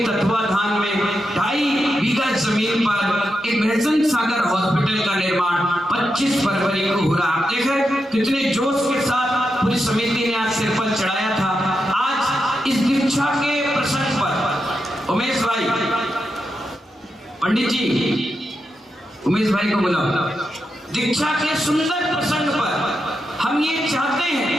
तत्वाधान में 2.5 बीघा जमीन पर एक भैसन सागर हॉस्पिटल का निर्माण 25 फरवरी को हो रहा। आप देखें कितने जोश के साथ पूरी समिति ने आज सिर पर चढ़ाया था। आज इस दीक्षा के प्रसंग पर उमेश भाई, पंडित जी उमेश भाई को बुलाओ। दीक्षा के सुंदर प्रसंग पर हम ये चाहते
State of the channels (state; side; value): normal; both; correlation 0.86